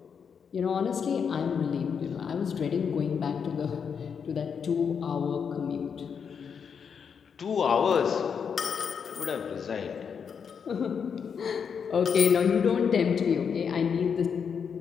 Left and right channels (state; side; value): quieter; right; 6.7 dB